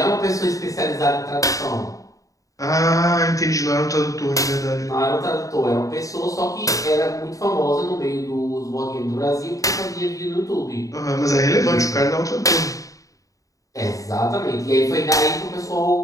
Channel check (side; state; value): right; late; 0.16 ms